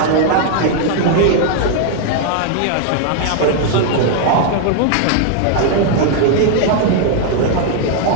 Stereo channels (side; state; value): both; different; correlation 0.00